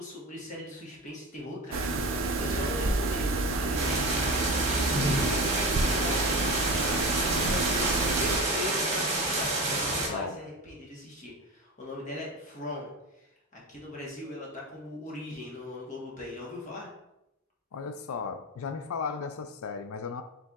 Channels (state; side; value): normal; both; correlation 0.27